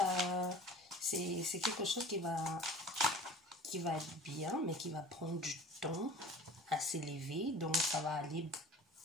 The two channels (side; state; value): both; normal; correlation 0.43